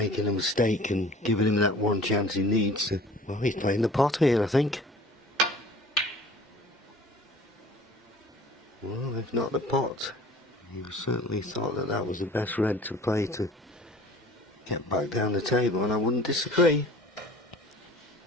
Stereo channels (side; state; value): both; normal; correlation 0.47